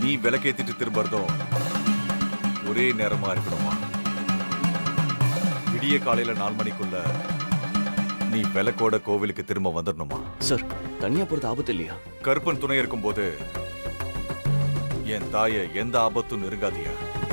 நீ விளக்கேத்திட்டு திரும்பறதும் ஒரே நேரமா இருக்கணுமா. விடிய காலையில 4 மணிக்குள்ள நீ விளக்கோட கோவிலுக்கு திரும்ப வந்துடணுமா. சார், தனியா போறது ஆபத்து இல்லையா? கருப்பன் துணை இருக்கும்போது என் தாய எந்த ஆபத்தும் நெருங்காதியா.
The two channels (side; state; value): both; inverted; correlation -1.00